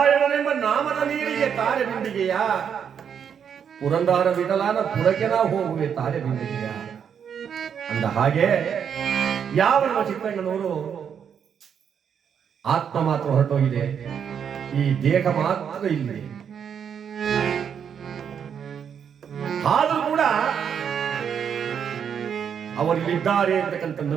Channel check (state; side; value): quieter; left; 7.8 dB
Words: ನಾಮದ ನೀರಿಗೆ ತಾರೆ ಬಿಂದಿಗೆಯ, ಪುರಂದರ ವಿಠಲನ ಪುರಕ್ಕೆ ನಾ ಹೋಗುವೆ ತಾರೆ ಬಿಂದಿಗೆಯ. ಅಂದ ಹಾಗೆ ಯಾವ ನಮ್ಮ ಚಿತ್ರಣ್ಣನವರು ಆತ್ಮ ಮಾತ್ರ ಹೊರಟೋಗಿದೆ, ಈ ದೇಹ ಮಾತ್ರ ಇಲ್ಲಿ. ಆದರೂ ಕೂಡ ಅವರಿಲ್ಲಿದ್ದಾರೆ ಅಂತಕ್ಕಂಥ